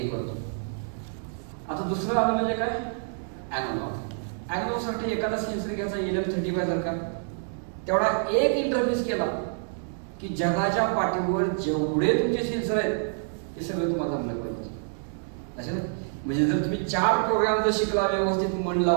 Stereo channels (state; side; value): silent; left; digital silence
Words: करतो. आता दुसरं आलं म्हणजे काय, अॅनालॉग. अॅनालॉगसाठी एखादा सेन्सर घ्यायचा LM35 सारखा, तेवढा एक इंटरफेस केला की जगाच्या पाठीवर जेवढे तुमचे सेन्सर आहेत ते सगळे तुम्हाला जमलं पाहिजे. असे म्हणजे जर तुम्ही 4 प्रोग्राम जर शिकला व्यवस्थित मन